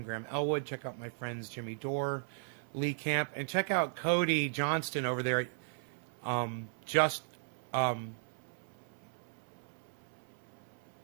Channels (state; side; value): silent; left; 53 dB below the other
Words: Graham Elwood. Check out my friends Jimmy Dore, Lee Camp, and check out Cody Johnston over there at